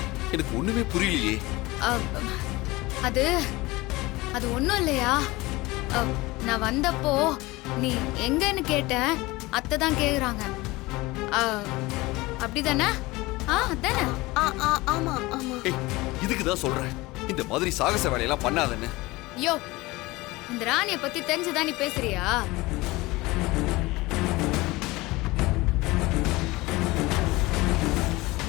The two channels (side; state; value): right; quieter; 21.2 dB